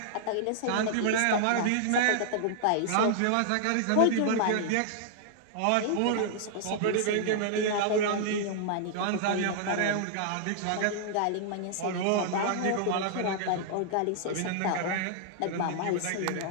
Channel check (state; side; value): different; both; correlation -0.01